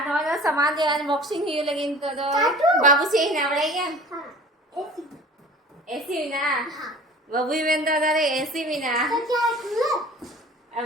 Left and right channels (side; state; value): both; normal; correlation 0.44